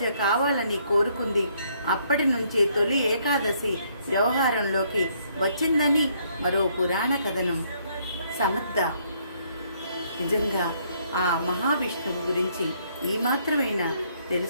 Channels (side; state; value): both; inverted; correlation -0.68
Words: కావాలని కోరుకుంది. అప్పటి నుంచి తొలి ఏకాదశి వ్యవహారంలోకి వచ్చిందని మరో పురాణ కథనం. సమర్థ, నిజంగా ఆ మహావిష్ణువు గురించి ఈ మాత్రమైనా